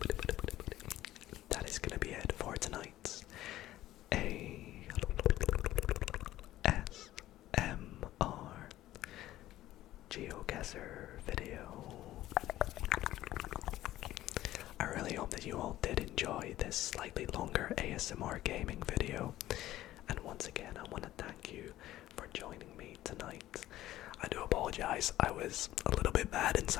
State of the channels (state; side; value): quieter; right; 14.6 dB